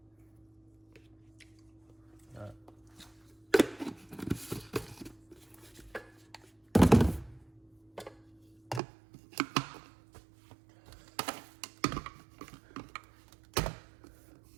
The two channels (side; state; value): left; drops out; at 8.8 s